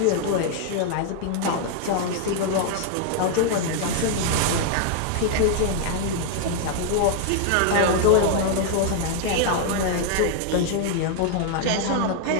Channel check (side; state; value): both; different; correlation 0.00